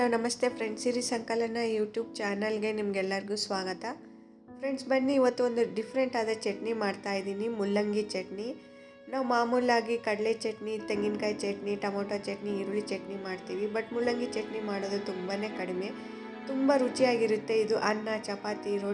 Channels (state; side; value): identical; both; correlation 1.00